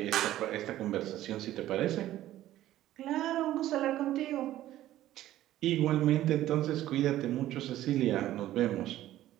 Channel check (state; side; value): quieter; left; 13.9 dB